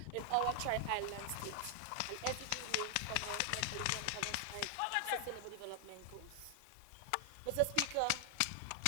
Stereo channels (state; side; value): different; both; correlation 0.00